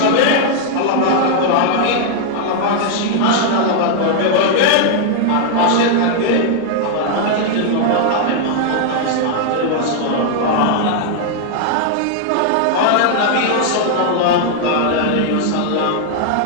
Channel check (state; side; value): different; both; correlation 0.00